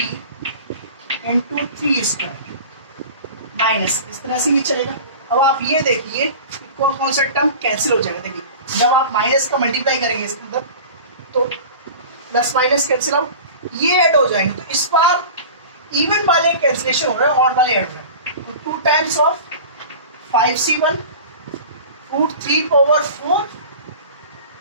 into 3 square minus, इस तरह से ये चलेगा। अब आप ये देखिए कौन कौन सा टर्म कैंसिल हो जाएगा। देखिए जब आप माइनस का मल्टीप्लाई करेंगे इसके अंदर तो प्लस माइनस कैंसिल आउट, ये ऐड हो जाएंगे, तो इस बार इवन वाले कैंसिलेशन हो रहे हैं, ऑड वाले ऐड हो रहे हैं। तो 2 times of 5C1 root 3 power 4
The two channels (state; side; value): inverted; both; correlation -0.37